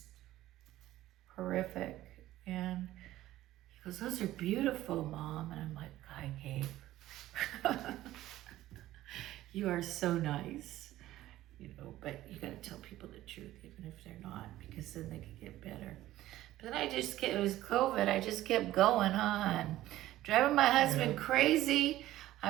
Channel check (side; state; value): left; quieter; 14.9 dB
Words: horrific. And he goes, "Those are beautiful, Mom." And I'm like, "Hi, Gabe." You are so nice, but you got to tell people the truth, even if they're not, because then they could get better. But then it was COVID, I just kept going on, driving my husband crazy.